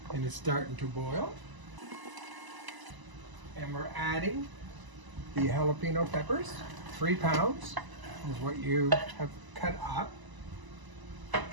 and it's starting to boil. And we're adding the jalapeno peppers. 3 pounds is what you have cut up.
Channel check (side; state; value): left; late; 1.0 ms